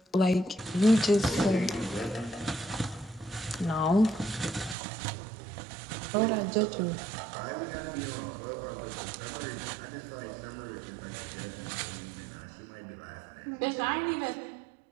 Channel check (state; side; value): drops out; left; at 4.8 s